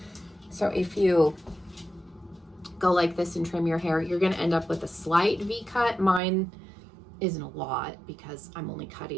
So if you go like this and trim your hair, you're gonna end up with a slight V cut. Mine isn't a lot because I'm only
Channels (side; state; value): left; drops out; at 6.2 s